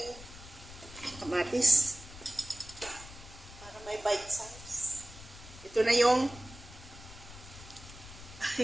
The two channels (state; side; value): noise; left; rumble, 16 dB below the sound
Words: kamatis para may bite size. Ito na yung